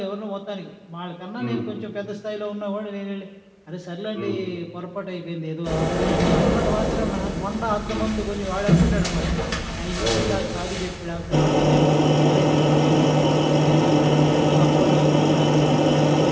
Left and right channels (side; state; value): both; identical; correlation 1.00